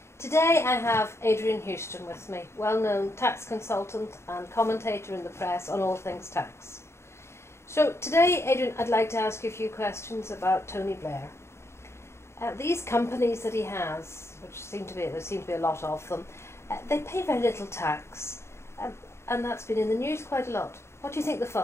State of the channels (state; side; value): late; right; 0.13 ms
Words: Today I have Adrian Huston with me, well-known tax consultant and commentator in the press on all things tax. So today, Adrian, I'd like to ask you a few questions about Tony Blair. These companies that he has, which there seem to be a lot of them, they pay very little tax, and that's been in the news quite a lot. What do you think the